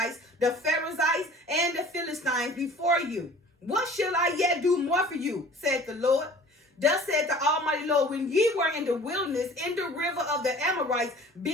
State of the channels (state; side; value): normal; both; correlation 0.47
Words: the Perizzites, and the Philistines before you. What shall I yet do more for you, said the Lord? Thus said the Almighty Lord, when ye were in the wilderness, in the river of the Amorites,